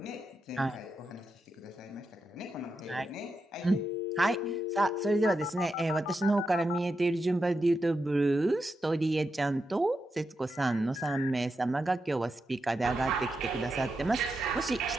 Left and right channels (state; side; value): normal; both; correlation 0.87